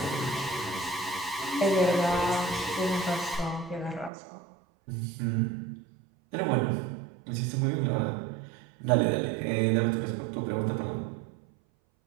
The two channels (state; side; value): drops out; left; at 4.1 s